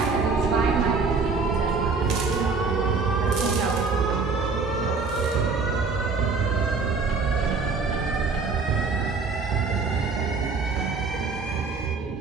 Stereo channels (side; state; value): left; quieter; 4.5 dB